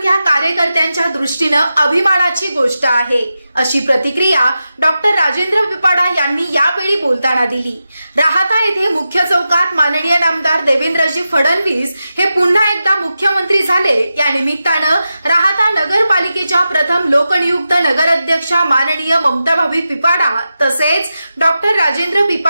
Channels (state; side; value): inverted; both; correlation -0.91